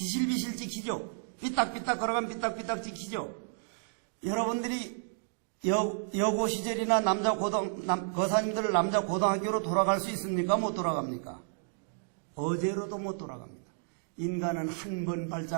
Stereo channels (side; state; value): left; silent; digital silence